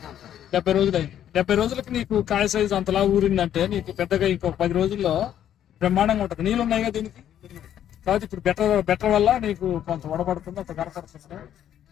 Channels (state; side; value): quieter; right; 10.6 dB